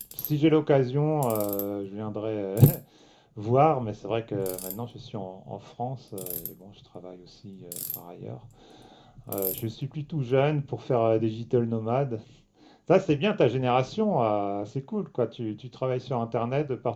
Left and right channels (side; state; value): both; identical; correlation 1.00